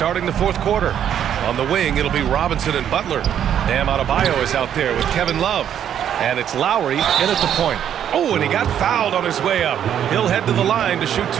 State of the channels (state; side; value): quieter; left; 9.6 dB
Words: the fourth quarter. On the wing, it'll be Robinson and Butler. Bam Adebayo is out there with Kevin Love. And it's Lowry in at the point. Oh, and he got fouled on his way up. He'll head to the line to shoot